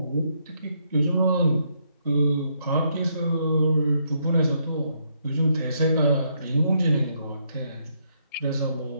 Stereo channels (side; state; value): both; inverted; correlation -0.75